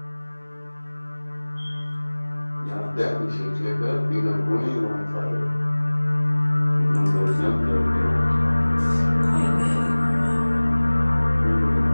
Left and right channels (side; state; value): both; inverted; correlation -1.00